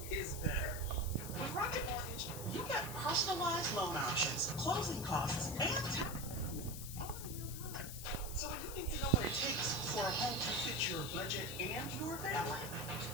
is better. With Rocket Mortgage, you get personalized loan options, closing costs, and tax. All in real time. So when you need to know what it takes for a home to fit your budget and your family,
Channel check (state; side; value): noise; left; hiss, 9 dB below the sound